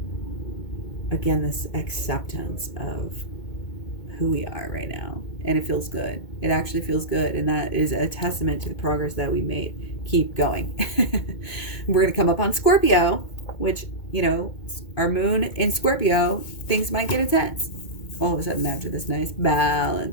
acceptance of who we are right now. And it feels good. It actually feels good. And that is a testament to the progress that we made. Keep going. We're going to come up on Scorpio, which our moon in Scorpio, things might get intense. All of a sudden after this nice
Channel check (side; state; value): right; late; 2.2 ms